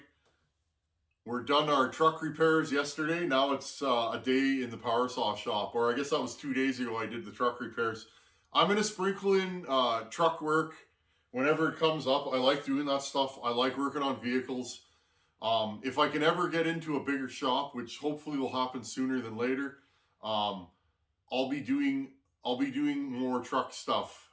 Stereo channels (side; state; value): both; identical; correlation 1.00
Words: We're done our truck repairs yesterday. Now it's a day in the power saw shop, or I guess that was 2 days ago I did the truck repairs. I'm going to sprinkle in truck work whenever it comes up. I like doing that stuff. I like working on vehicles. If I can ever get into a bigger shop, which hopefully will happen sooner than later, I'll be doing more truck stuff.